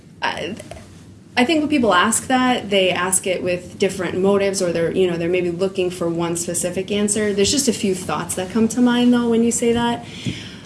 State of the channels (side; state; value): both; identical; correlation 1.00